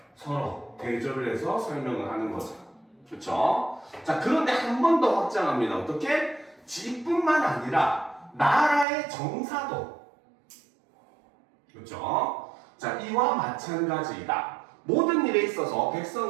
서로 대조를 해서 설명을 하는 거죠. 그렇죠? 자, 그런데 한 번 더 확장합니다. 어떻게? 집뿐만 아니라 나라의 정사도, 그렇죠? 자, 이와 마찬가지이다. 모든 일에 있어서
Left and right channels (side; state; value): left; drops out; at 8.8 s